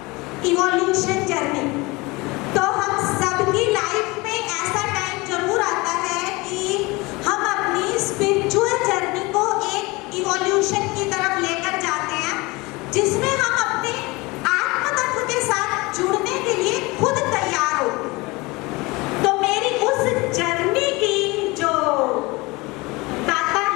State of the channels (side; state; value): right; quieter; 23.8 dB